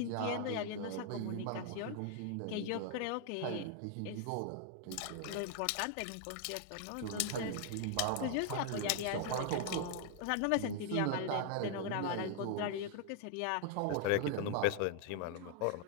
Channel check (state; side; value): different; both; correlation 0.00